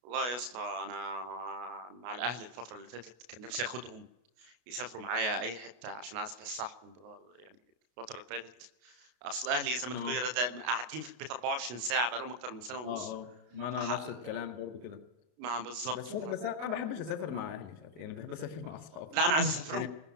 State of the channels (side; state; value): left; late; 33 ms